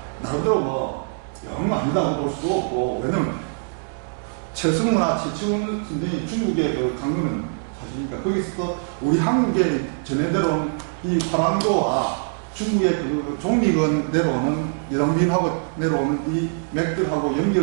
나름대로 뭐 영 아니다고 볼 수도 없고 왜냐면 최승우나 최치훈 선생이 중국의 그 강론은 사실이니까 거기서 또 우리 한국에 전해 내려온 이 화랑도와 중국의 그 종리건 내려오는 여당빈하고 내려오는 이 맥들하고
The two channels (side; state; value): left; silent; digital silence